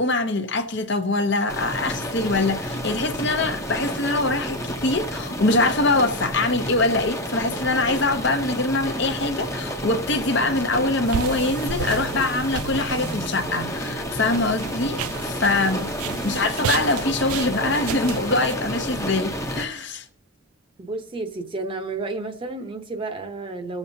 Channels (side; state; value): both; normal; correlation 0.13